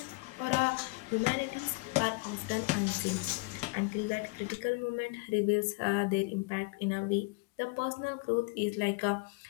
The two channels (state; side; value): quieter; right; 27.2 dB